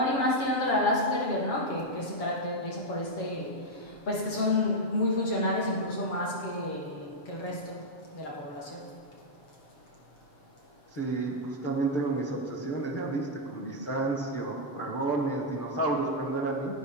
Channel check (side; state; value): right; late; 7.3 ms